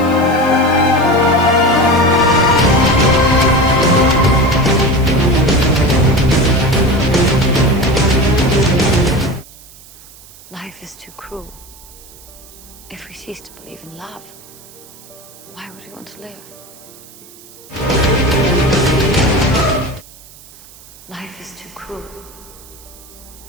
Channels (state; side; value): noise; right; hiss, 21 dB below the sound